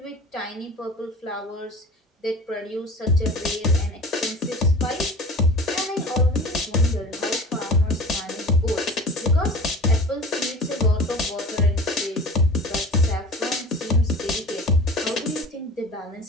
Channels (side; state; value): both; normal; correlation 0.39